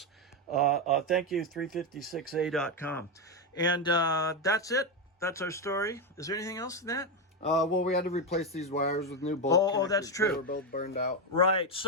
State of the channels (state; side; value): normal; both; correlation 0.09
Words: Thank you, 356a.com. And that's it. That's our story. Is there anything else in that? Well, we had to replace these wires with new bolt connectors. Oh, that's true. They were both burned out. Right.